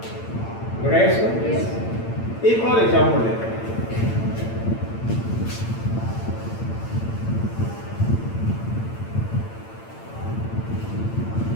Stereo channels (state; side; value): late; right; 8.9 ms